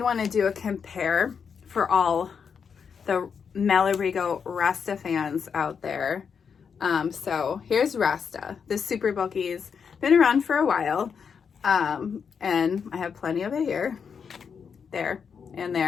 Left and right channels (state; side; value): quieter; right; 6.5 dB